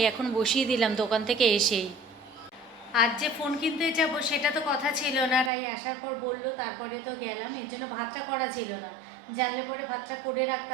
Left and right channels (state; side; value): drops out; left; at 5.5 s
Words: এখন বসিয়ে দিলাম দোকান থেকে এসেই। আজ যে ফোন কিনতে যাব সেটা তো কথা ছিল না, রাই আসার পর বললো, তারপরে তো গেলাম, এর জন্য ভাতটা করা ছিল না। জানলে পরে ভাতটা করে